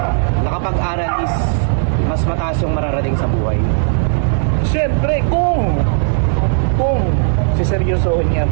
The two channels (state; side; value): silent; left; digital silence